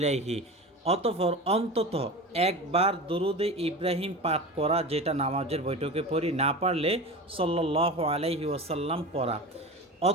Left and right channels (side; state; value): both; normal; correlation 0.30